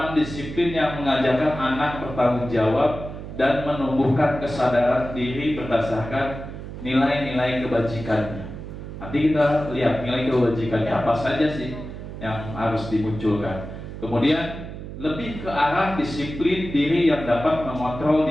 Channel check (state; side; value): noise; right; hum, 10 dB below the sound